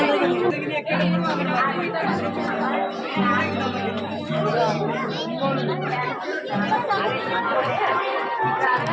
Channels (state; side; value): identical; both; correlation 1.00